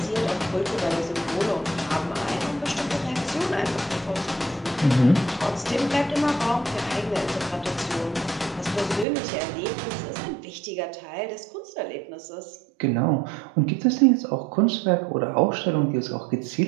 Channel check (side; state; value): left; drops out; at 9.1 s